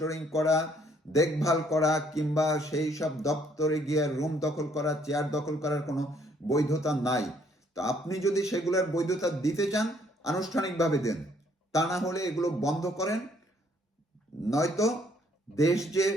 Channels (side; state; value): both; normal; correlation 0.65